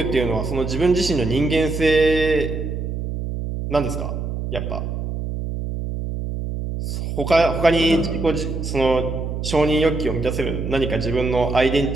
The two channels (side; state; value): right; noise; hum, 4 dB below the sound